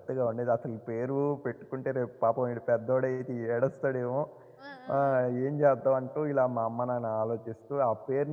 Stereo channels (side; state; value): both; identical; correlation 1.00